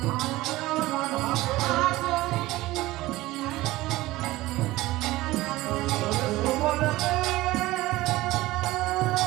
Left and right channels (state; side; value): quieter; left; 18.1 dB